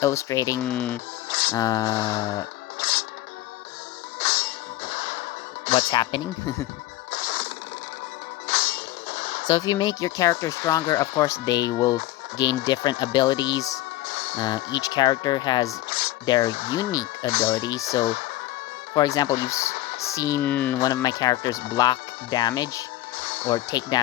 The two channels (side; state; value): right; quieter; 15.9 dB